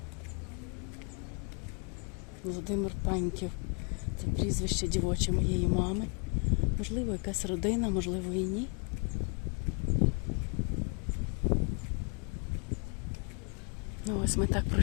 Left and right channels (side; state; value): right; quieter; 38.0 dB